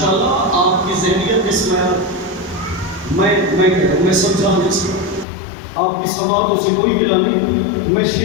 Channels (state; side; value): drops out; right; at 5.2 s